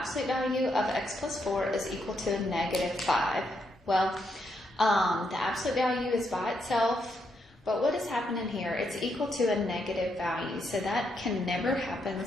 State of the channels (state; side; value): normal; both; correlation 0.78